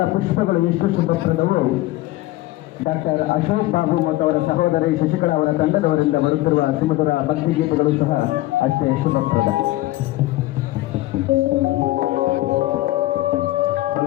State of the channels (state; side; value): quieter; right; 17.4 dB